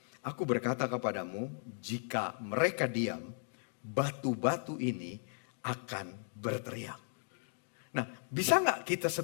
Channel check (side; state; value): right; silent; digital silence